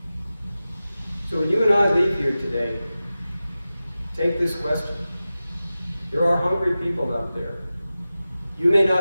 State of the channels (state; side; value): inverted; both; correlation -0.94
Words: So when you and I leave here today, take this question. There are hungry people out there. You may